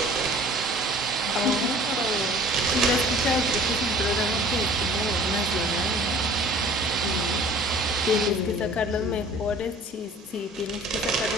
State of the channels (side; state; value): both; normal; correlation 0.48